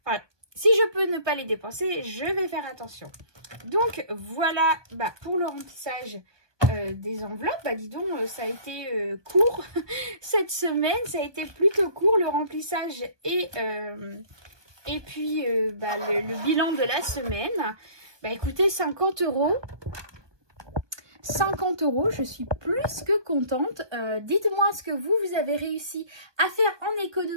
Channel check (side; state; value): left; late; 1.2 ms